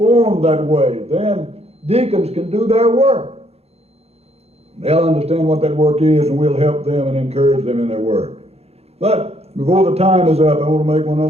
that way, then deacons can do their work. They'll understand what that work is, and we'll help them and encourage them in their work. But before the time is up, I want to make one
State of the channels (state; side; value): late; left; 0.30 ms